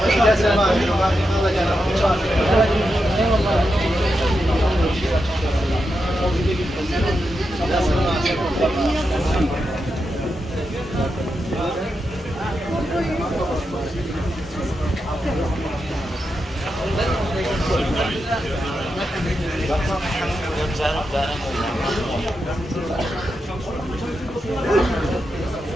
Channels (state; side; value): normal; both; correlation 0.87